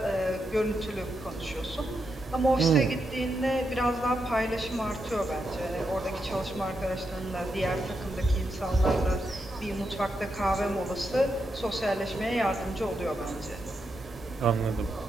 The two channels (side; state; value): both; normal; correlation 0.84